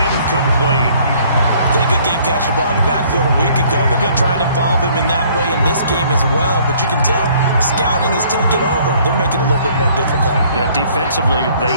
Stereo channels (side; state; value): both; inverted; correlation -0.59